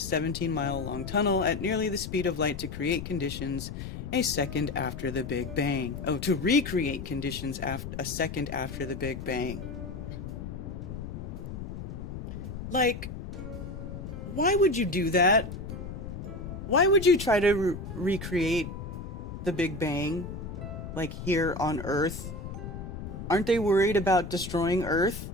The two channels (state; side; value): noise; left; rumble, 8 dB below the sound